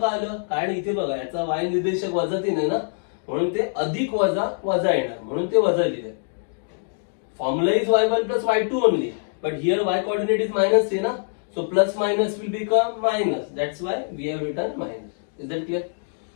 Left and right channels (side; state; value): right; silent; digital silence